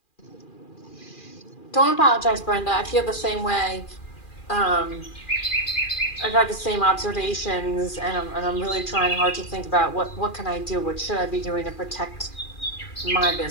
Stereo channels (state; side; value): late; right; 2.4 ms